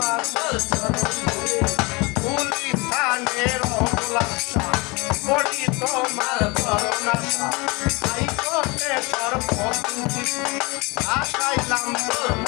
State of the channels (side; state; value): right; quieter; 26.6 dB